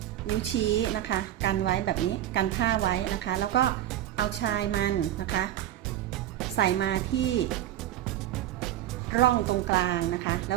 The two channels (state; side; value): quieter; left; 12.5 dB